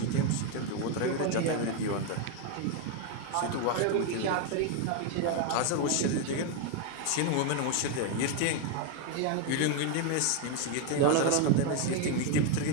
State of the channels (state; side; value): different; both; correlation 0.01